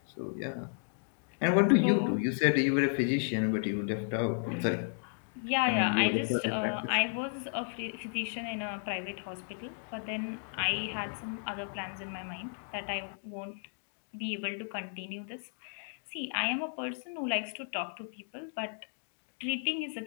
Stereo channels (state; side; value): silent; right; 55 dB below the other